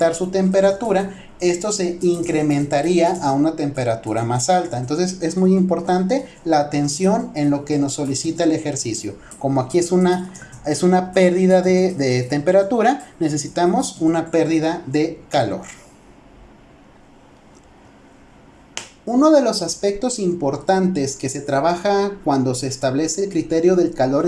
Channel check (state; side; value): identical; both; correlation 1.00